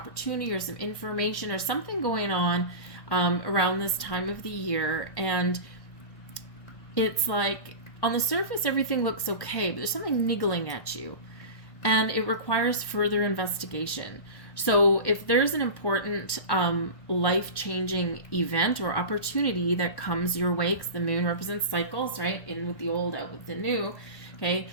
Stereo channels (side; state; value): right; late; 1.1 ms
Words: or some information or something going on around this time of the year. And it's like, on the surface, everything looks okay, but there's something niggling at you, and it requires further investigation. So if there's an important life-changing event or opportunity that comes your way, because the moon represents cycles, right? In with the old, out with the new, okay?